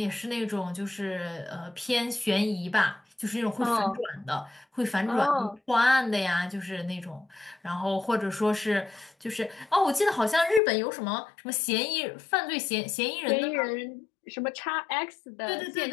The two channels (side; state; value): right; drops out; at 10.6 s